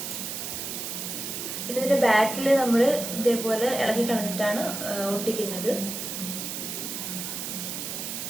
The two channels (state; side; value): noise; right; hiss, 5 dB below the sound